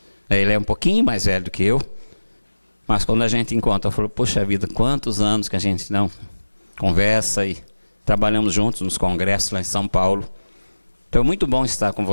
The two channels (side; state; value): both; inverted; correlation -1.00